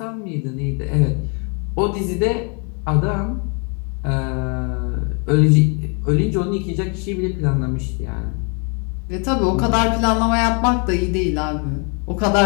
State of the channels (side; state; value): right; quieter; 36.2 dB